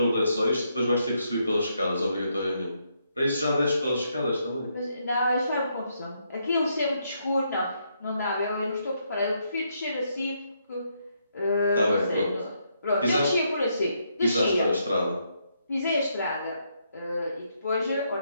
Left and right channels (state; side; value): inverted; both; correlation -0.77